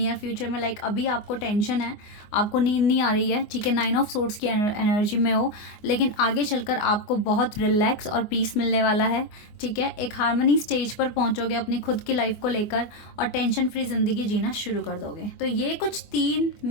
फ्यूचर में। लाइक अभी आपको टेंशन है, आपको नींद नहीं आ रही है, ठीक है, 9 ऑफ सोर्ड्स की एनर्जी में हो, लेकिन आगे चलकर आपको बहुत रिलैक्स और पीस मिलने वाला है, ठीक है। एक हार्मनी स्टेज पर पहुंचोगे अपनी खुद की लाइफ को लेकर और टेंशन फ्री ज़िंदगी जीना शुरू कर दोगे। तो ये कुछ 3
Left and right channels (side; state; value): right; late; 24 ms